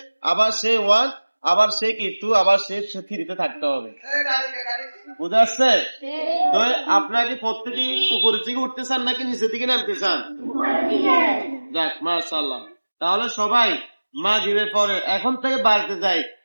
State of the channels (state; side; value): inverted; both; correlation -1.00